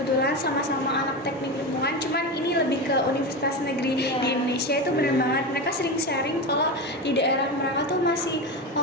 sama-sama anak teknik lingkungan, cuman ini lebih ke universitas negeri di Indonesia. Itu bener banget, mereka sering sharing kalau di daerah mereka tuh masih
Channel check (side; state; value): both; normal; correlation 0.20